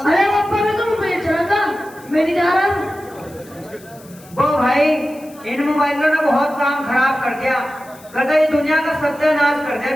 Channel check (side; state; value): left; noise; hiss, 24 dB below the sound